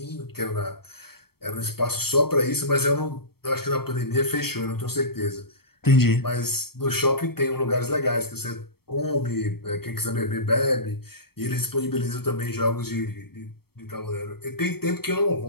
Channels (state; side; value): late; right; 0.95 ms